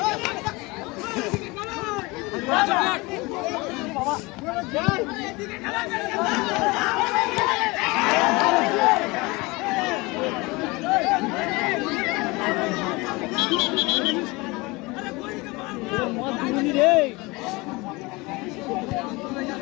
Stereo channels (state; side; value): quieter; right; 24.1 dB